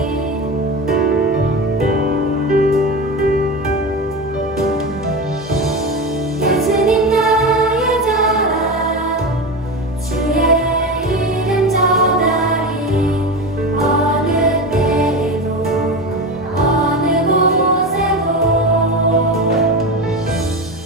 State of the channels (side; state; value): both; normal; correlation 0.23